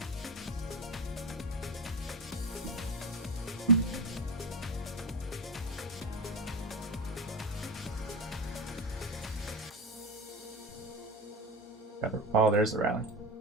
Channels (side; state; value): both; normal; correlation 0.20